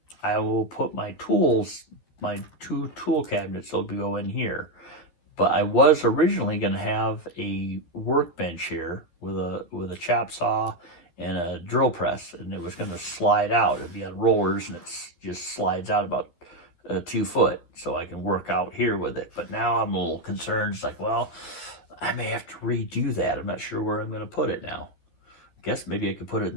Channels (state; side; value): late; right; 12 ms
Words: I will put my tools, my 2 tool cabinets will go in here. But I was originally going to have a workbench here with a chop saw and a drill press, and it was going to slide out. It'd be on rollers, and it just slides out about 2 foot, so I can work out here with it. But now I'm a little concerned. It's like, well, I may have to redo that. I'm not sure where I'm going to put it now. I guess maybe I could put it in